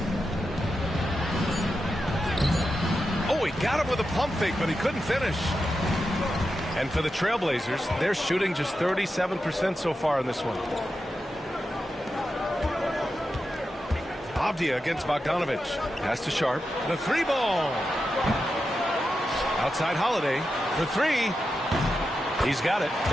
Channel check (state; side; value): normal; both; correlation 0.89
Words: Oh, he got him with a pump fake, but he couldn't finish. And for the Trailblazers, they're shooting just 37% so far in this one. Avdia against Bogdanovich. Pass to Sharp. The 3-ball. Outside Holiday for 3. He's got it.